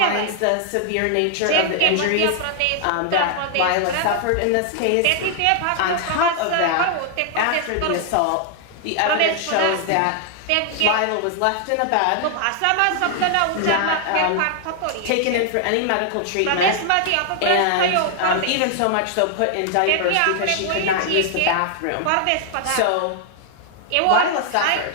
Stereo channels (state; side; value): different; both; correlation 0.00